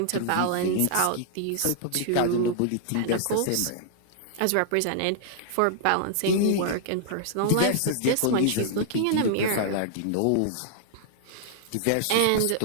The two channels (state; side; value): different; both; correlation -0.01